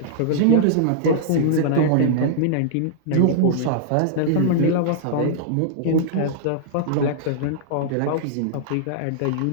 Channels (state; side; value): different; both; correlation -0.02